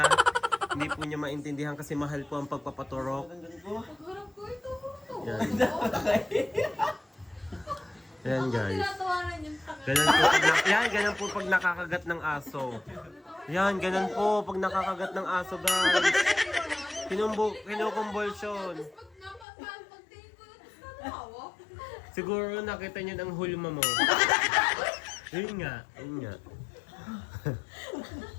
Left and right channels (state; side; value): drops out; right; at 19.5 s